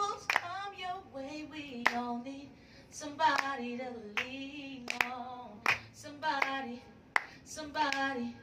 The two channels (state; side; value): identical; both; correlation 1.00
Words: come your way, we all need somebody to lean on. Somebody